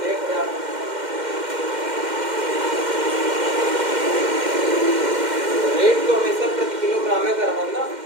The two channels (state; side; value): late; left; 2.1 ms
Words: हैं? 1000। रेट तो हमेशा प्रति किलोग्राम में कर रहा ना,